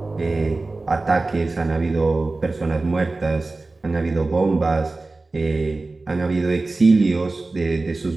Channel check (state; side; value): quieter; left; 3.4 dB